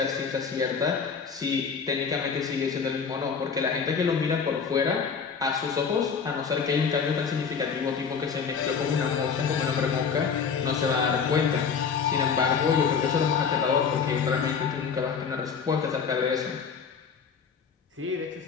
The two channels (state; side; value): quieter; right; 6.1 dB